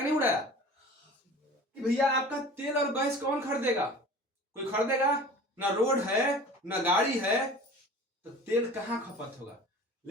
नहीं उड़ाया कि भैया आपका तेल और गैस कौन खरीदेगा? कोई खरीदेगा? ना रोड है ना गाड़ी है, तो तेल कहां खपत होगा।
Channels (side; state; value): both; normal; correlation 0.41